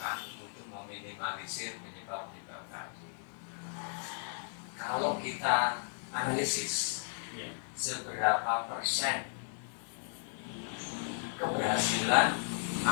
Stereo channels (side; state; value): right; silent; 54 dB below the other